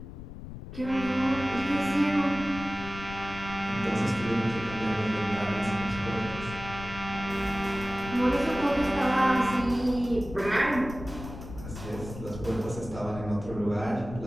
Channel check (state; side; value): noise; left; rumble, 11 dB below the sound